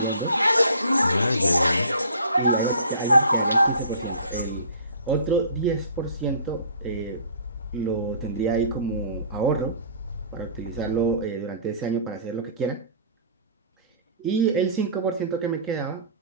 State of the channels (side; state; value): both; inverted; correlation -0.47